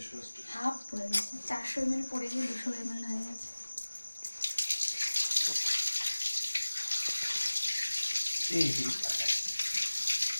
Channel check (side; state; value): both; inverted; correlation -1.00